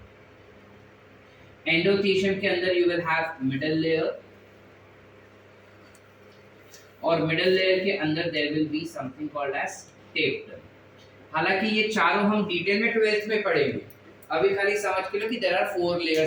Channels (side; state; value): both; identical; correlation 1.00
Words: Endothecium के अंदर you will have middle layer. और मिडल लेयर के अंदर there will be something called as tapetum. हालांकि ये चारों हम डिटेल में 12th में पढ़ेंगे, अभी खाली समझ के लो कि there are 4